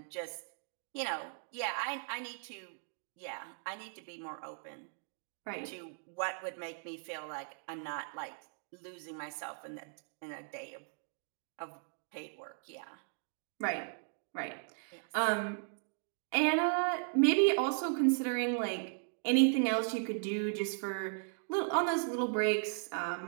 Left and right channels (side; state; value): left; silent; digital silence